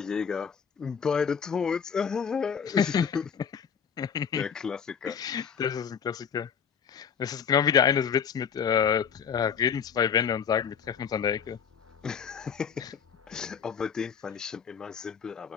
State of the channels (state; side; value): quieter; right; 7.2 dB